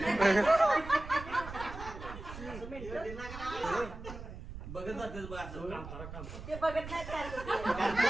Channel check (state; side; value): noise; right; rumble, 11 dB below the sound